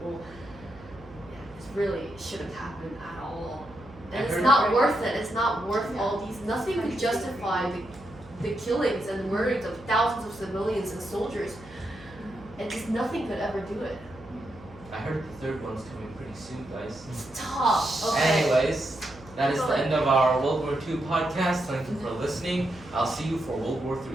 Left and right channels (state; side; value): noise; right; hum, 21 dB below the sound